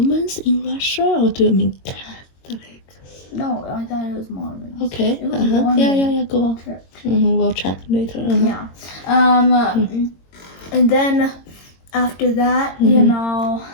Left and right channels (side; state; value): right; late; 22 ms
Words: in Russia, or do you mean Catholics? No, I thought it was Mormons. Okay. It was Mormon. Yeah, go on. Church. We'll check later. Yeah. And then after that,